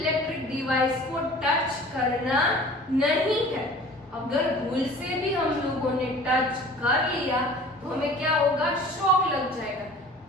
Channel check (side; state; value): both; normal; correlation 0.45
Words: डिवाइस को टच करना नहीं है। अगर भूल से भी हम लोगों ने टच कर लिया तो हमें क्या होगा, शॉक लग जाएगा।